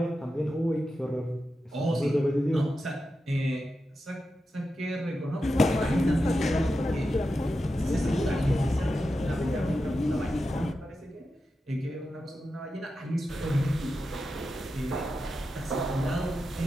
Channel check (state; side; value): normal; both; correlation 0.90